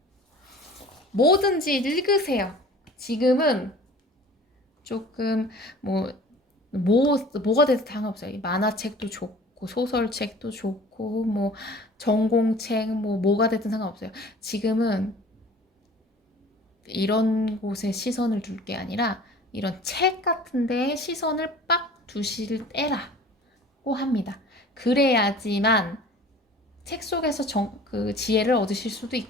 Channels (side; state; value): both; normal; correlation 0.46